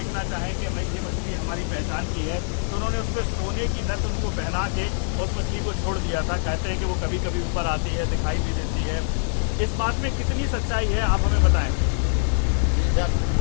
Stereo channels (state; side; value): silent; right; digital silence